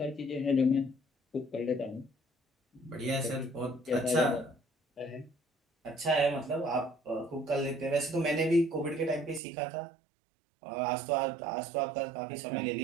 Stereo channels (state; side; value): drops out; left; at 9.4 s